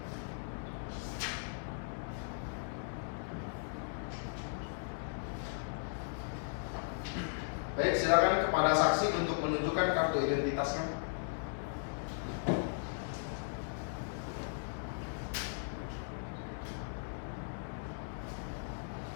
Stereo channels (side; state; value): right; silent; digital silence